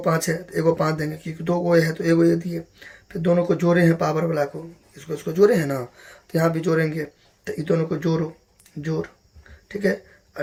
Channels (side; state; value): both; identical; correlation 1.00